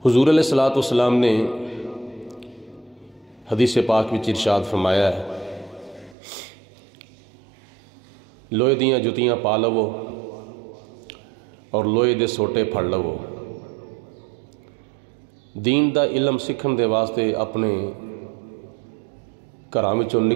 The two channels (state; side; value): drops out; left; at 6.2 s